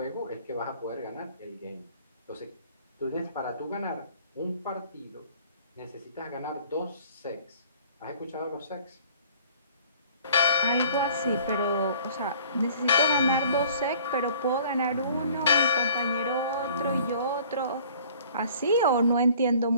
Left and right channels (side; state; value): both; inverted; correlation -0.52